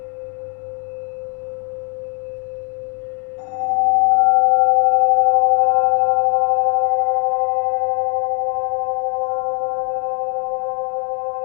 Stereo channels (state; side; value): quieter; right; 38.1 dB